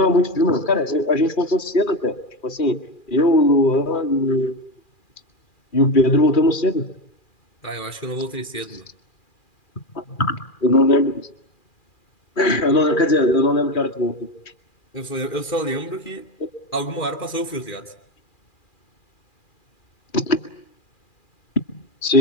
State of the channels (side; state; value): right; late; 2.4 ms